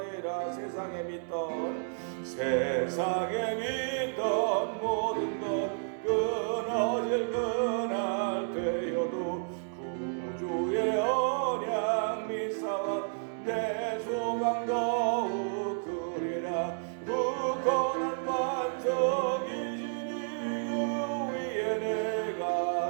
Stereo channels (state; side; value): silent; left; digital silence